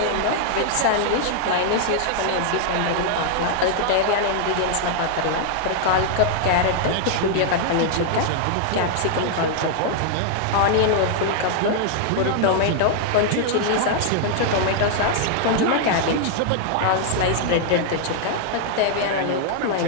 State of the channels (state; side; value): different; both; correlation -0.01